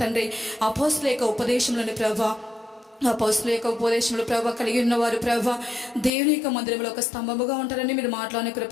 తండ్రి అపోస్తలుల యొక్క ఉపదేశంలోని ప్రభా అపోస్తుల యొక్క ఉపదేశంలో ప్రభావ కలిగి ఉన్నవారు ప్రభావ దేవుని యొక్క మందిరంలో ఒక స్తంభముగా ఉంటారని మీరు మాట్లాడిన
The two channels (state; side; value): drops out; right; at 6.1 s